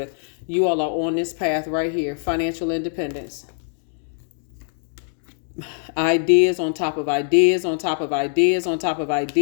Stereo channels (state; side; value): silent; right; digital silence